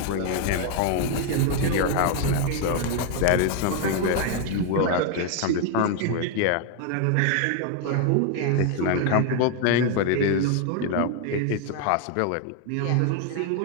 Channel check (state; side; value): different; both; correlation 0.00